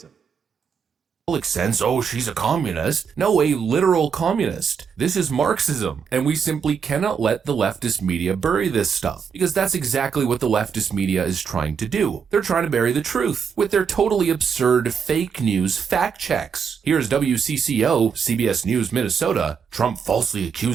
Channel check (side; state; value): left; quieter; 6.5 dB